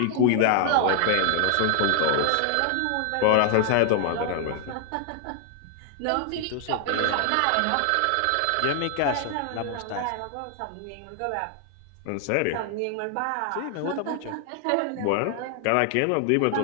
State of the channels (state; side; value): different; both; correlation 0.00